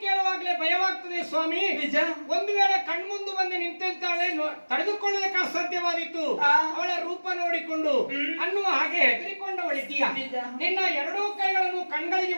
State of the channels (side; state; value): both; inverted; correlation -1.00